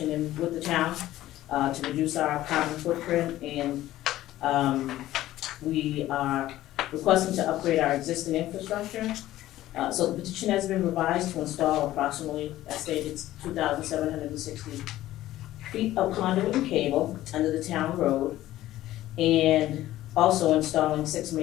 with the town to reduce our carbon footprint. And we are requesting to upgrade our existing infrastructure. So the petition has been revised to install approximately, as stated, 2,760 feet of conduit and cable under the town road, and also installing 6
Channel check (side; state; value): right; quieter; 14.8 dB